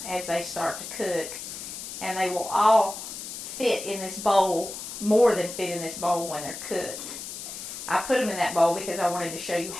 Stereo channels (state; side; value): noise; left; hiss, 9 dB below the sound